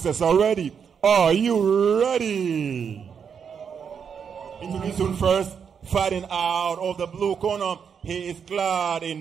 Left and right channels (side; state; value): left; quieter; 7.0 dB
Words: are ready. Are you ready? Introducing first, fighting out of the blue corner. He is clad